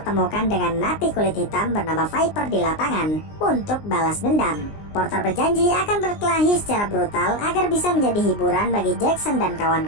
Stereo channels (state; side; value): late; right; 19 ms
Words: dengan napi kulit hitam bernama Viper di lapangan untuk balas dendam. Porter berjanji akan berkelahi secara brutal agar bisa menjadi hiburan bagi Jackson dan